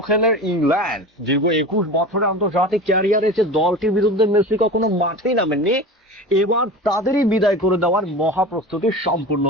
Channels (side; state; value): both; normal; correlation 0.32